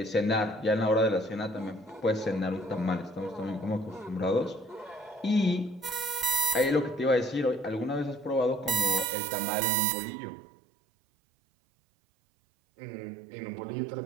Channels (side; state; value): left; drops out; at 9.1 s